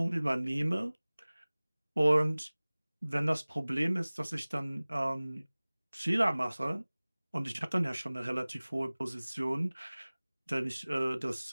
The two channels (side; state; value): both; inverted; correlation -1.00